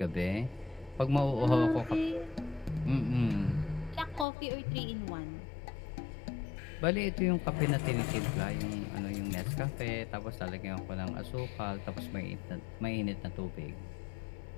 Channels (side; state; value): right; drops out; at 4.2 s